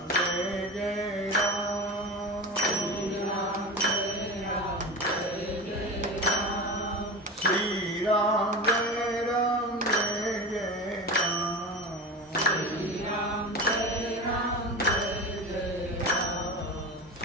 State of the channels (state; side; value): normal; both; correlation 0.27